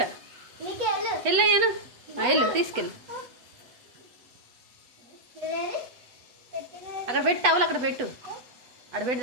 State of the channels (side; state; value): left; late; 8.1 ms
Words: వెళ్ళు అయ్యాను వెళ్ళు తీసుకెళ్ళు. అక్కడ పెట్టు టవల్ అక్కడ పెట్టు అక్కడ పెట్టు